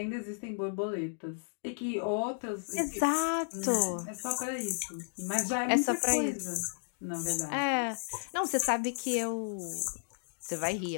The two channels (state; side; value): silent; right; digital silence